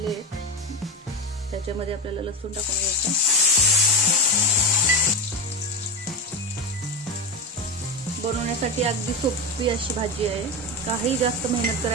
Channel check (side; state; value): both; normal; correlation 0.17